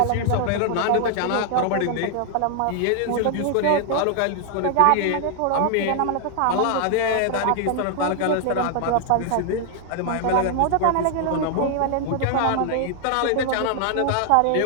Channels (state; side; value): different; both; correlation 0.00